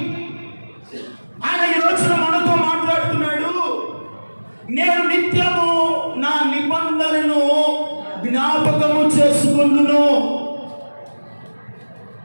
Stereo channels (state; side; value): inverted; both; correlation -1.00